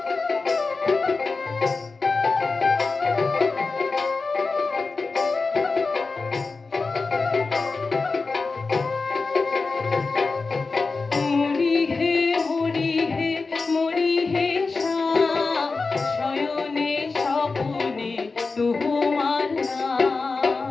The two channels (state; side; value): quieter; right; 4.1 dB